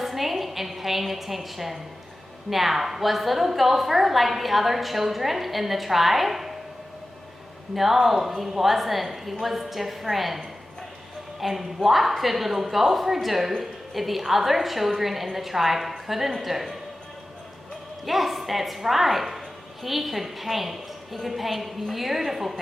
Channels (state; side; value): normal; both; correlation 0.95